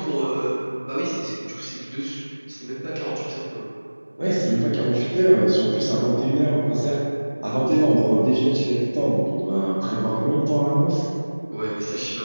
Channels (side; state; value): both; inverted; correlation -1.00